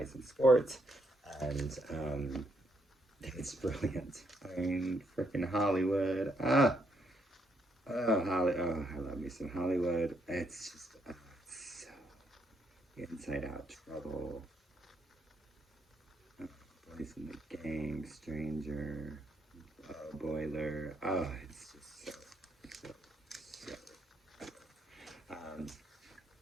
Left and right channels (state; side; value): normal; both; correlation 0.74